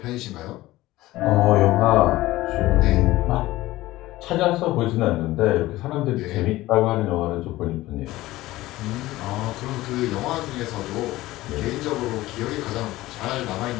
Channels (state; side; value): quieter; right; 17.4 dB